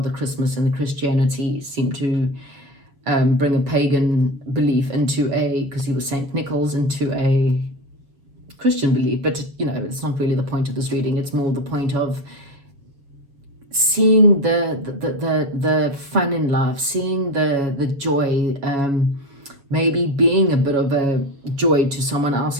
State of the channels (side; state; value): left; late; 7.2 ms